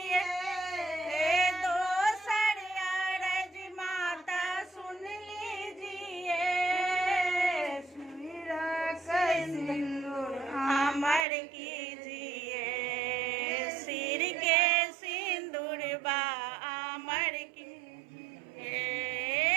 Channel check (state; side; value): drops out; left; at 11.2 s